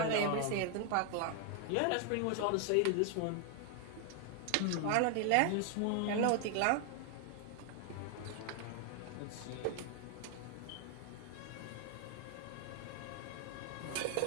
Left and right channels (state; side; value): different; both; correlation 0.00